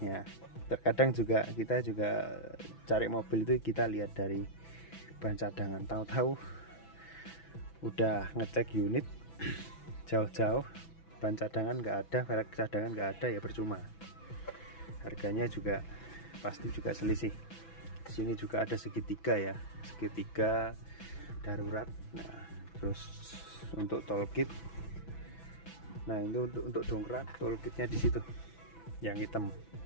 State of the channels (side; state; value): right; late; 6.0 ms